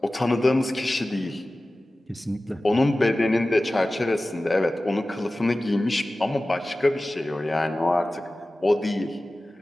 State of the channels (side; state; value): both; normal; correlation 0.96